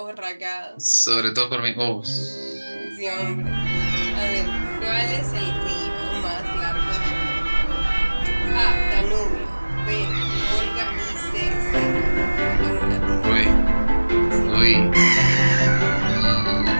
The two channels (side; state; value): both; inverted; correlation -1.00